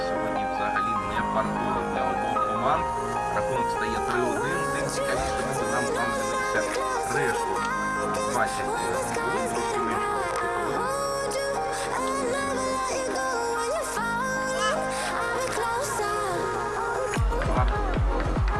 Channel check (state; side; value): identical; both; correlation 1.00